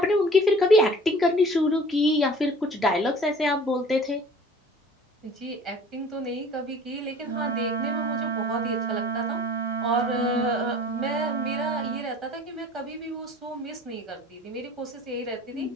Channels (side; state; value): both; normal; correlation 0.47